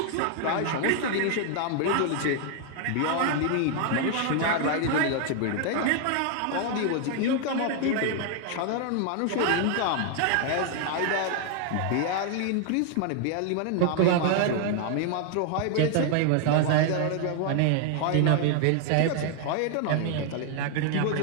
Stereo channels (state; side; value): different; both; correlation 0.00